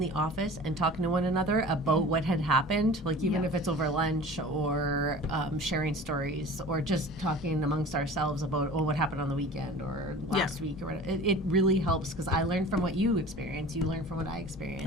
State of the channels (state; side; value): normal; both; correlation 0.40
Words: office and talking to one another about what had happened, like even if it's over lunch or sharing stories or just talking amongst ourselves about, what happened on the weekend or last week, or it really helps because I learn from what you experience, you learn from what I experience.